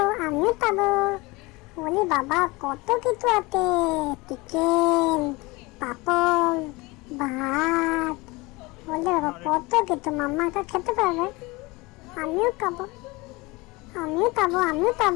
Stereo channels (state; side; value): quieter; right; 23.6 dB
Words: আমিও খাবো। বলি বাবা কত কিছু আছে, চিকেন, পাপড়, ভাত। বলি বাবা কত কিছু, মাম্মা একা খেতে পারবে? আমিও খাবো আমিও খাবো আমিও